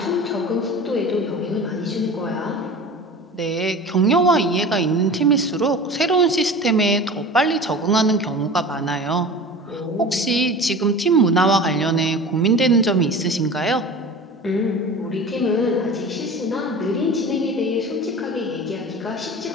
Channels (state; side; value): normal; both; correlation 0.36